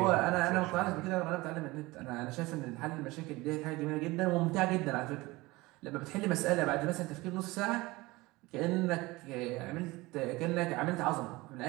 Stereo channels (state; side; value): quieter; left; 21.4 dB